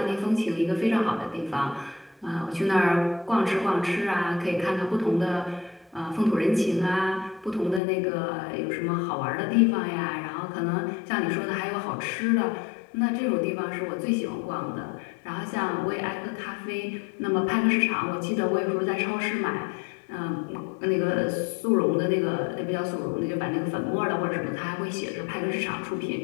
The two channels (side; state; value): right; drops out; at 7.8 s